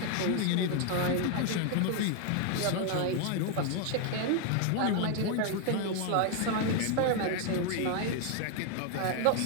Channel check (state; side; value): different; both; correlation 0.01